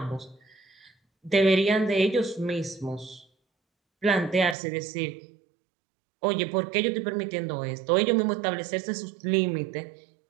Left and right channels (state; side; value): drops out; left; at 4.5 s